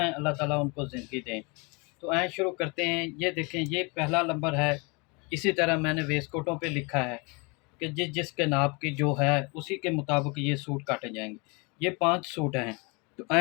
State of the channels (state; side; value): quieter; right; 30.0 dB